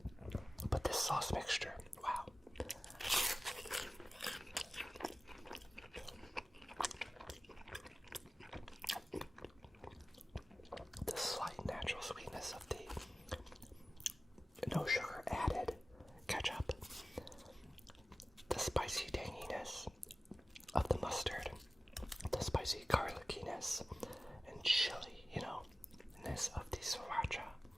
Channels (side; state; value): both; normal; correlation 0.97